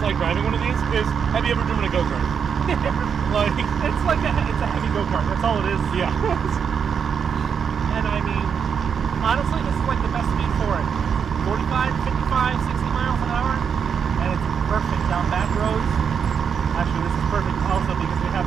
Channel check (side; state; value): left; quieter; 7.0 dB